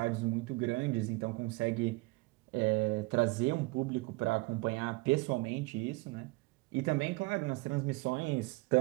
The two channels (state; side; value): quieter; left; 24.6 dB